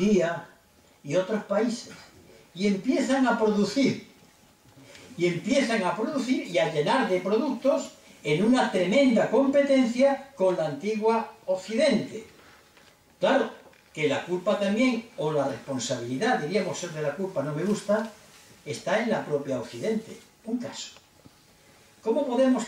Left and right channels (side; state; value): both; identical; correlation 1.00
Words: y otros países. Y empiezan a producir. Y a llenar de productos en una tremenda competencia con la antigua Occidente. Claro, que la culpa también, o la responsabilidad, diríamos ser de la culpa, no me gusta, está en la propia Occidente. Un caso. ¿Cómo podemos